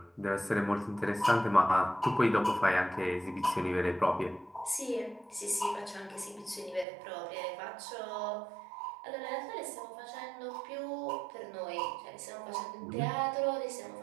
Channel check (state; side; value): drops out; left; at 6.9 s